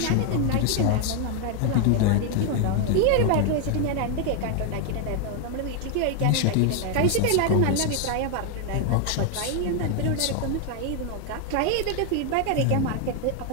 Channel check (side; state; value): both; different; correlation 0.00